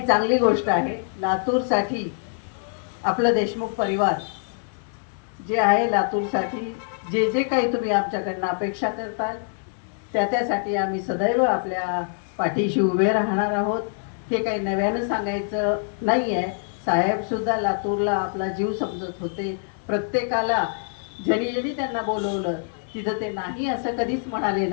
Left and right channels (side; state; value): right; silent; digital silence